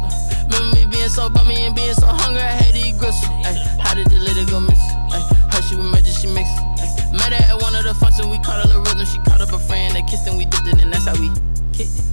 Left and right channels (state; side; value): inverted; both; correlation -1.00